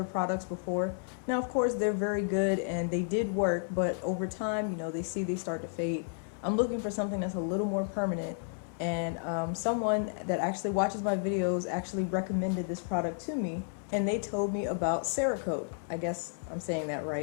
products before. Now, of course, they're very good and they did work, but over time, you know, they start to fade. I'm looking for something that's a little more permanent, and someone that actually watches my videos actually recommended this product to me, and they told me about Cerakote. I guess I'm saying that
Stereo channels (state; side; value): silent; right; 56 dB below the other